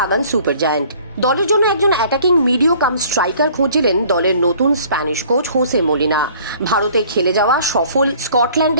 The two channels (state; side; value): inverted; both; correlation -0.54